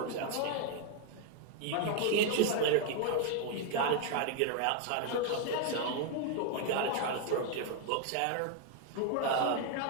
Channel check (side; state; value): both; different; correlation 0.00